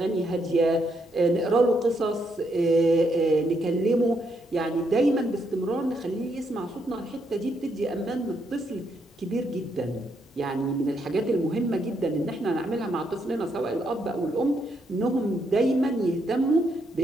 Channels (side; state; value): both; normal; correlation 0.77